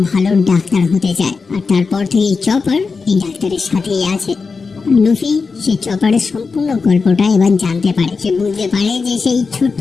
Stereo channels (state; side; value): quieter; right; 4.7 dB